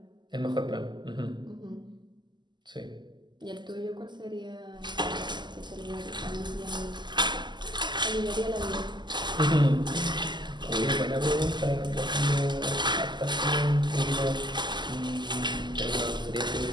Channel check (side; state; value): left; late; 0.21 ms